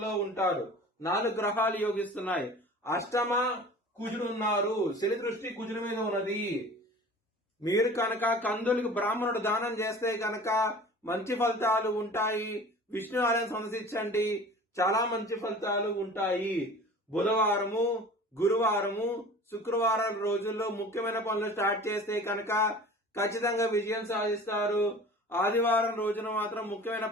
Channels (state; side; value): normal; both; correlation 0.42